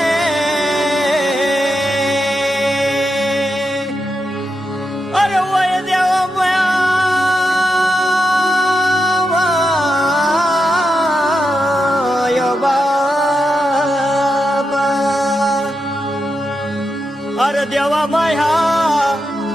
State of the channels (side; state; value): both; normal; correlation 0.86